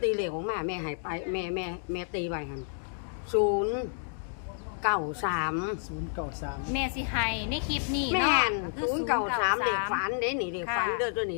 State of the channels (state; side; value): silent; right; digital silence